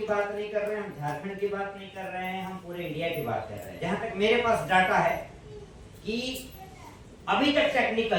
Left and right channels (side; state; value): both; identical; correlation 1.00